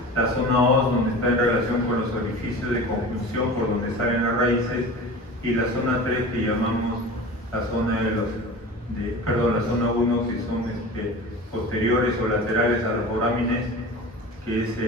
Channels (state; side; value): normal; both; correlation 0.35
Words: la zona 2 donde está en relación con los orificios de conjunción por donde salen las raíces, y la zona 3 que llamamos la zona la zona 1 que son posteriores o laterales a los forámenes, que es